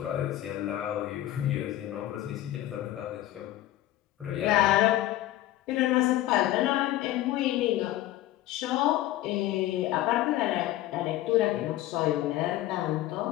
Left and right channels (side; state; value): right; quieter; 14.8 dB